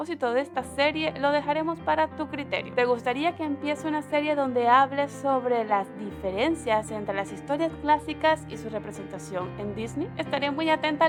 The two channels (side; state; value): both; identical; correlation 1.00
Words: de esta serie, lo dejaremos para tu criterio. ¿Te gustaría que empiece una serie donde hables sobre las diferencias entre las historias clásicas y su representación en Disney? Estaré muy atenta a